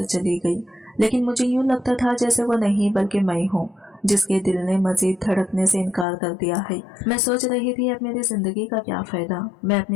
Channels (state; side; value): drops out; right; at 6.1 s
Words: चली गई। लेकिन मुझे यूं लगता था जैसे वो नहीं बल्कि मैं हूँ जिसके दिल ने मजीद धड़कने से इनकार कर दिया है। मैं सोच रही थी अब मेरी जिंदगी का क्या फायदा, मैं